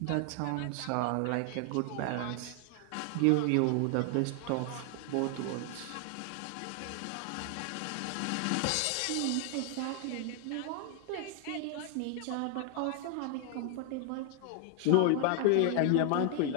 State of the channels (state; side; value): different; both; correlation 0.00